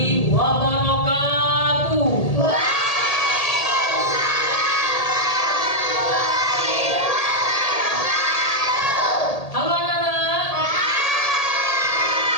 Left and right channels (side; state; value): right; late; 1.8 ms